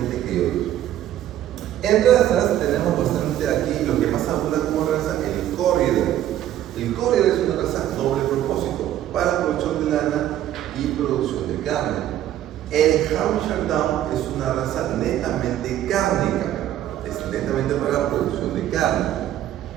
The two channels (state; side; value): quieter; left; 12.1 dB